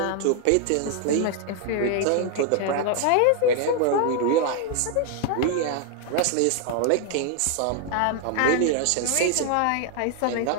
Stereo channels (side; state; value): both; different; correlation 0.00